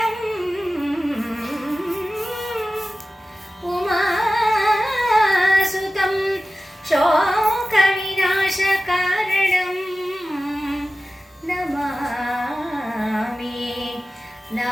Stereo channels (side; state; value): both; normal; correlation 0.95